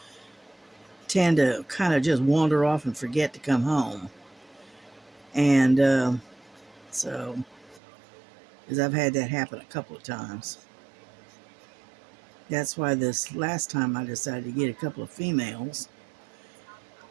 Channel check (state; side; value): drops out; left; at 7.8 s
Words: tend to kind of just wander off and forget to come home. And so, because I've had that happen a couple of times. That's why this last time I decided to get a couple of females.